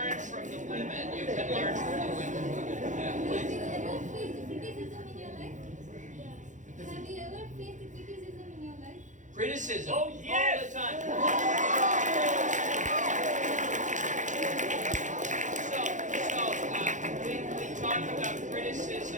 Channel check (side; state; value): left; late; 0.36 ms